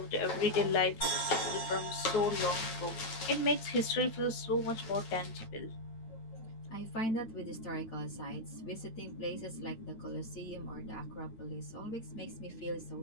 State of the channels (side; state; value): right; late; 9.1 ms